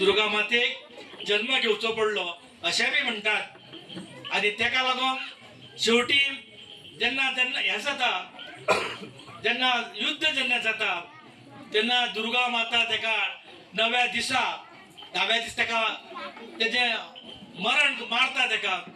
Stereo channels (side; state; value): both; identical; correlation 1.00